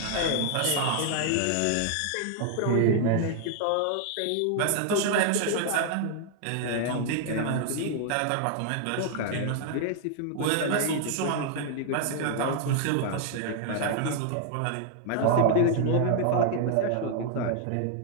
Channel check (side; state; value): both; different; correlation 0.00